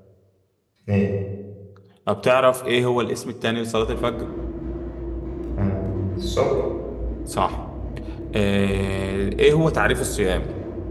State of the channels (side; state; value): both; identical; correlation 1.00